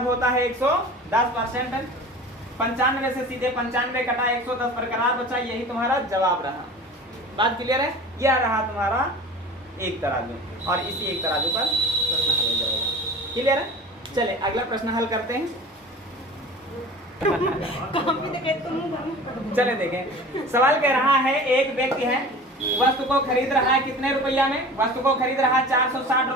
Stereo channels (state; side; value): normal; both; correlation 0.38